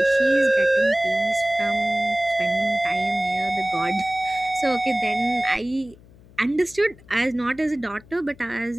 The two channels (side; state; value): left; noise; hum, 24 dB below the sound